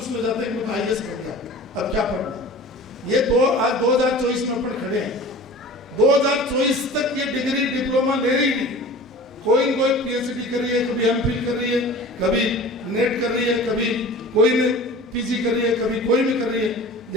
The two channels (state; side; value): normal; both; correlation 0.39